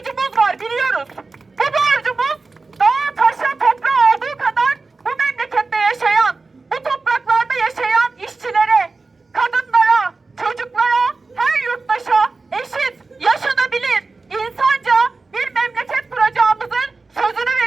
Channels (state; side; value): quieter; left; 3.8 dB